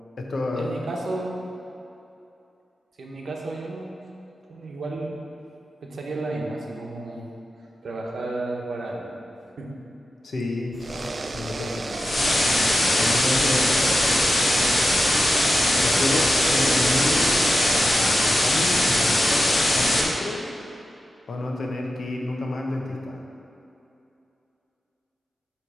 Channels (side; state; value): both; normal; correlation 0.90